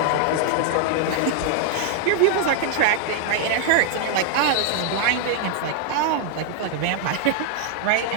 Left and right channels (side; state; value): both; different; correlation 0.00